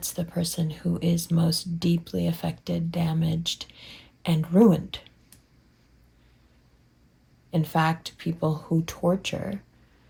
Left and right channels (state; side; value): identical; both; correlation 1.00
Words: the person who is most deeply affected, damaged, and ruined. In fact, people who torture,